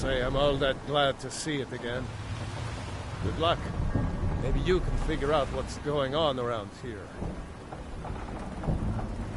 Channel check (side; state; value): both; identical; correlation 1.00